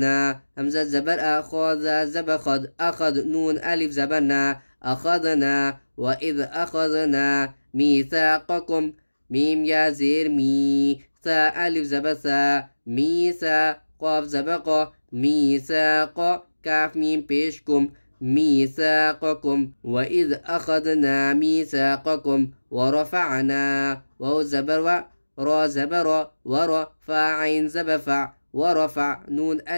حمزہ زبر أخذ زبر خد أخذ نون ألف زبرنا أخذنا وإذ أخذنا ميثاقكم ميم يا زير مي ثا ألف زبر ثا ميثا قاف زبق ميثاق كاف ميم بيشكم ميثاقكم وإذ أخذنا ميثاقكم ورفعنا واو زبر و را زبر ورفع عين زبفع ورفع نون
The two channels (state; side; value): inverted; both; correlation -1.00